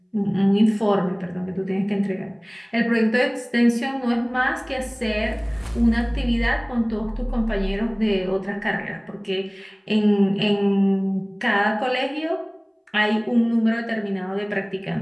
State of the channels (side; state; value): both; identical; correlation 1.00